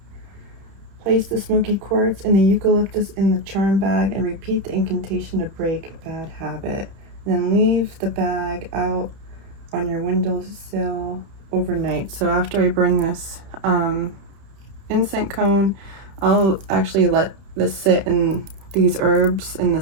place the smoky quartz and the eucalyptus in the charm bag and repeat the incantation to break bad habit. Then leave the bag out on your windowsill overnight. So after I burn this incense cone, I'll actually let this sit in these herbs in the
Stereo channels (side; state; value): left; late; 30 ms